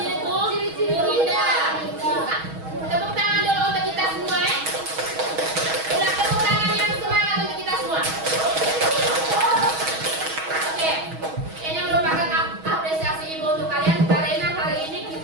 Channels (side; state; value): left; late; 6.3 ms